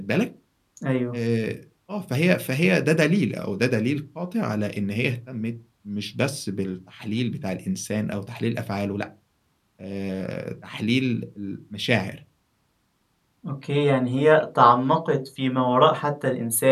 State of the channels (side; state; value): both; identical; correlation 1.00